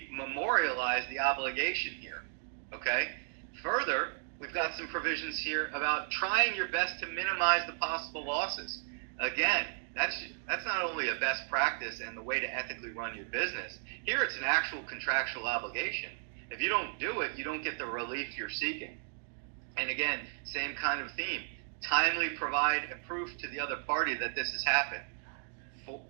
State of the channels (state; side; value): silent; left; digital silence